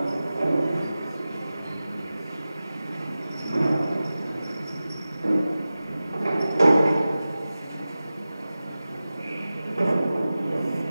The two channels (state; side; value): inverted; both; correlation -0.95